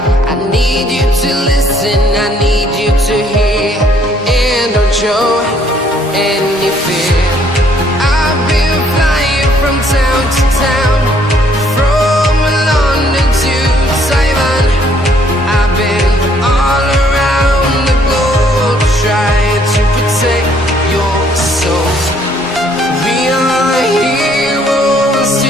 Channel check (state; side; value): normal; both; correlation 0.64